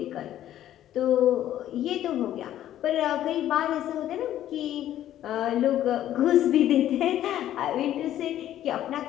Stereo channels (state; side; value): quieter; right; 12.2 dB